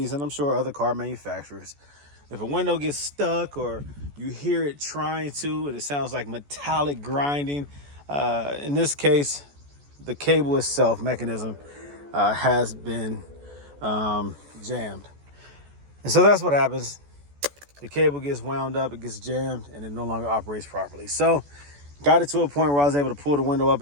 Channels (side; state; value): left; late; 14 ms